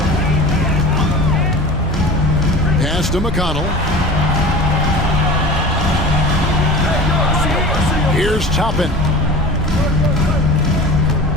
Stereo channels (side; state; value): left; noise; hum, 10 dB below the sound